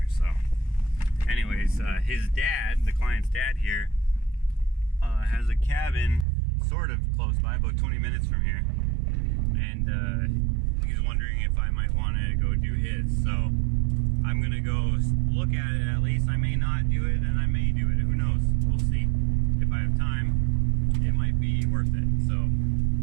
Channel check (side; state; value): left; drops out; at 6.2 s